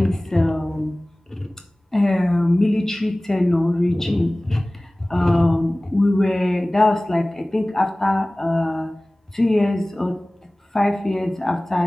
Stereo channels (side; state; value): both; normal; correlation 0.98